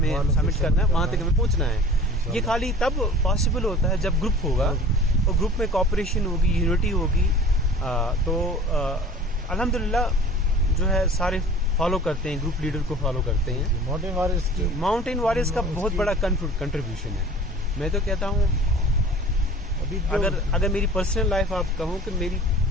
सबमिट करना है, वहाँ तक हमें पहुँचना है। ये खाली तब पॉसिबल होता है जब ग्रुप होगा और ग्रुप में कोऑपरेशन होगी, यूनिटी होगी। तो अल्हम्दुलिल्लाह जो है सारे फॉलो करते हैं, ग्रुप लीडर को फॉलो करते हैं। माउंटेन वॉरियर्स का बहुत बड़ा कंट्रीब्यूशन है। मैं तो कहता हूँ अभी अगर मेरी पर्सनल लाइफ आप कहूँ कि मेरी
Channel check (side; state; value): both; normal; correlation 0.44